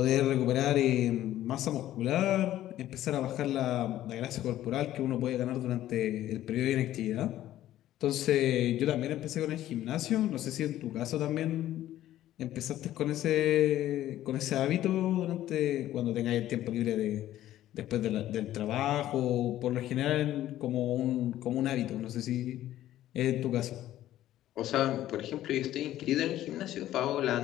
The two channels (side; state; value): right; quieter; 13.4 dB